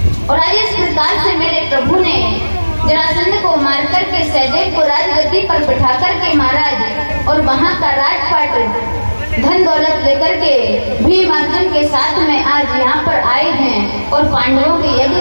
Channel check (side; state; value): both; inverted; correlation -1.00